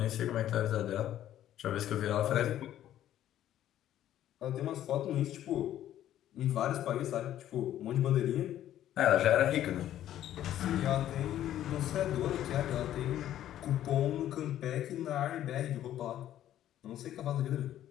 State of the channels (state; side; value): quieter; right; 12.1 dB